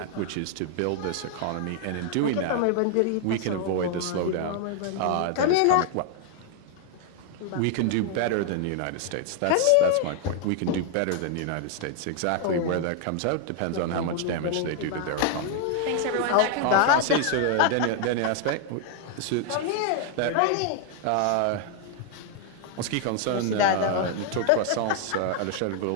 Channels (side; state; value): both; different; correlation 0.00